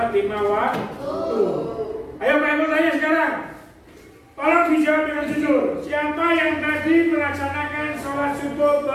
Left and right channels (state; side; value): identical; both; correlation 1.00